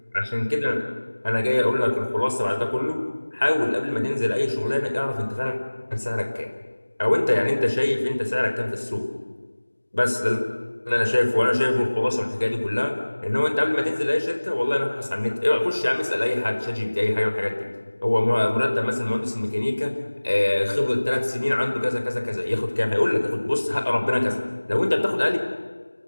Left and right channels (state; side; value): inverted; both; correlation -1.00